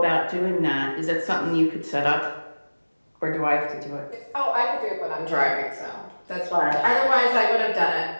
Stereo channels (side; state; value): both; inverted; correlation -1.00